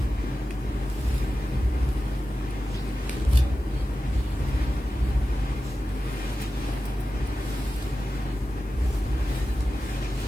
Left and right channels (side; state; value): left; noise; hiss, 29 dB below the sound